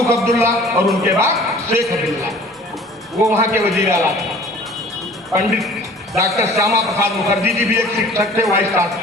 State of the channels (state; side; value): normal; both; correlation 0.48